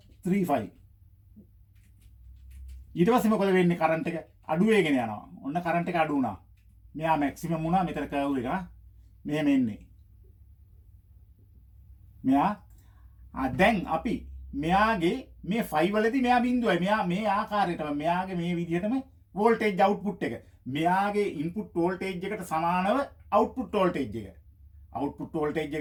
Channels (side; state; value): both; identical; correlation 1.00